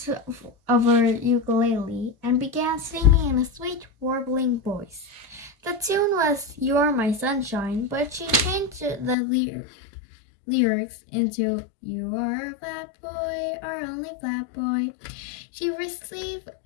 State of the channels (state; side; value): drops out; right; at 9.2 s